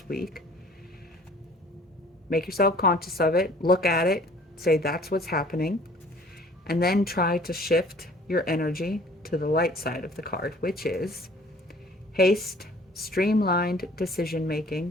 week, make yourself conscious of it, look at it, say that's what's happening, and then try to shift your energy to the light side of the card, which is haste, streamlined decision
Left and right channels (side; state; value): both; normal; correlation 0.52